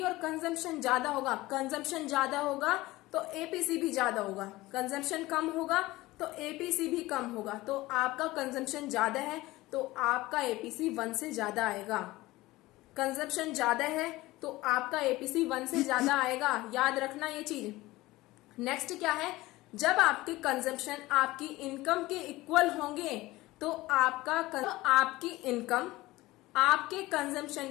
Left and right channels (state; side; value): quieter; right; 18.9 dB